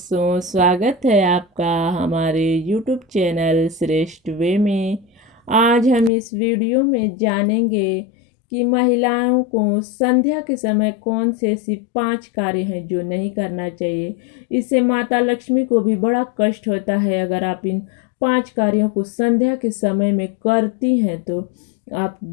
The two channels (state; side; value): drops out; right; at 6.1 s